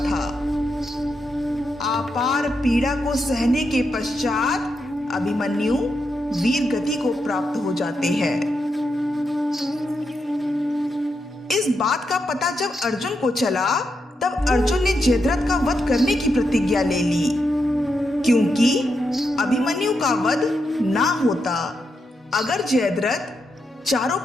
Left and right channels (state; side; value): normal; both; correlation 0.84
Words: अपार पीड़ा को सहने के पश्चात अभिमन्यु वीर गति को प्राप्त हो जाते हैं। इस बात का पता जब अर्जुन को चला, तब अर्जुन ने जयद्रथ का वध करने की प्रतिज्ञा ले ली, क्योंकि अभिमन्यु का वध ना होता अगर जयद्रथ चारों